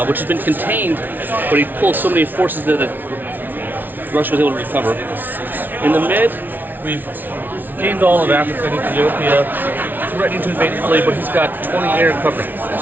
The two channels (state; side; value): late; left; 0.088 ms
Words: which has been contained, but he pulled so many forces there that Russia was able to recover. In the mid, we've gained all of Africa and Ethiopia, threatening to invade Italy, but he's got 20 air coverage,